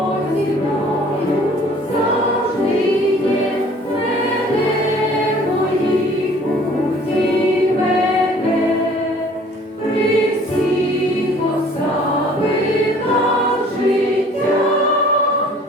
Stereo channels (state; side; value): normal; both; correlation 0.53